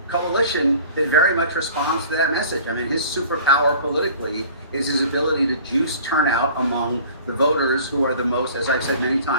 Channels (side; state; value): both; inverted; correlation -0.46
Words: coalition that very much responds to that message. I mean, his superpower politically is his ability to juice turnout among the voters who are the most, as I've said many